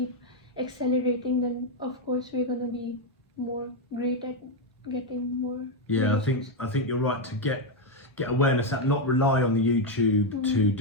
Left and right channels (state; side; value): normal; both; correlation 0.04